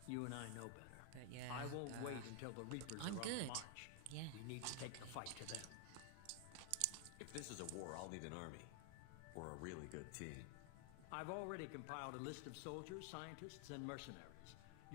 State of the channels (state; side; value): different; both; correlation 0.00